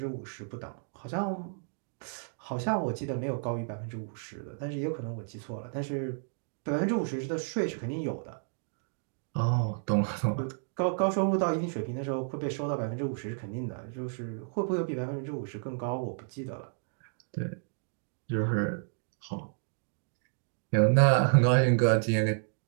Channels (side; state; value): left; silent; digital silence